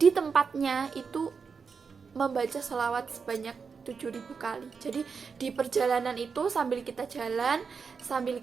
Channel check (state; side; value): quieter; left; 5.6 dB